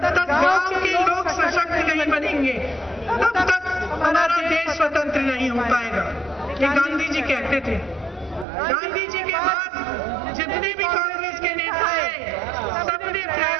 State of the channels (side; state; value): left; drops out; at 8.5 s